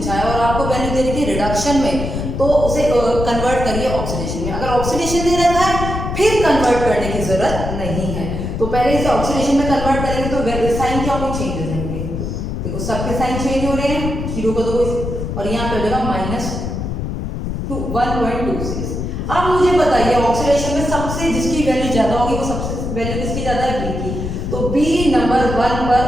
है और आपको वैल्यू दे रखी है रिडक्शन में, तो उसे कन्वर्ट करिए ऑक्सीडेशन में। अगर ऑक्सीडेशन दे रखा है फिर कन्वर्ट करने की जरूरत नहीं है, तो पहले इसे ऑक्सीडेशन में कन्वर्ट करेंगे तो साइन क्या होंगे, चेंज हो जाएंगे। देखो सबके साइन चेंज हो रहे हैं, 0 को दो और यहाँ पे हो जाएगा -1.26। अब मुझे बताइए ऑक्सीडेशन में सबसे जिसकी वैल्यू ज्यादा होगी वो सबसे वैल्यू किसकी ज्यादा है, बी की, तो बी नंबर 1 पर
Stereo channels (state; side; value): noise; left; rumble, 4 dB below the sound